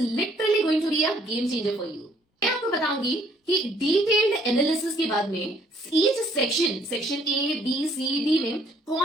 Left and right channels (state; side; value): normal; both; correlation 0.64